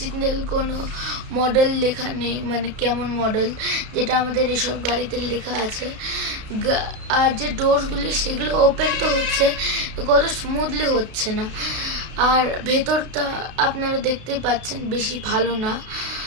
কোনো মডেল লেখা নেই, মানে কেমন মডেল, যেটা আমাদের এসব গাড়িতে লেখা আছে। আর যে ডোরসগুলি সেগুলো ওপেন তো হচ্ছে, কত স্মুথলি হচ্ছে না। আর ভেতরটা আপনারা দেখতে পাচ্ছেন বেশি ভালো না,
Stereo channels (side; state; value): left; late; 33 ms